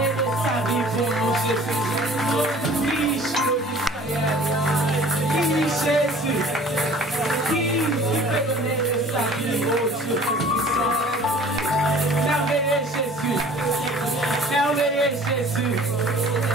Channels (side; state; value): both; normal; correlation 0.48